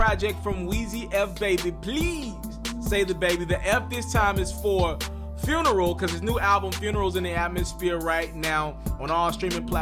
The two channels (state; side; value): identical; both; correlation 1.00